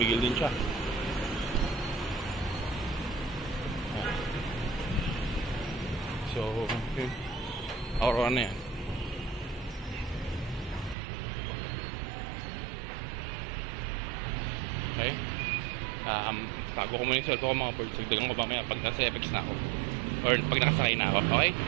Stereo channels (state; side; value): drops out; left; at 11.0 s